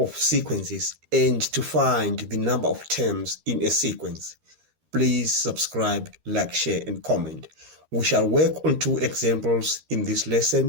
sequences and to find the number of terms in a sequence. Please subscribe, like, share, and comment. We shall work on 2 examples in this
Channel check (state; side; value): late; left; 13 ms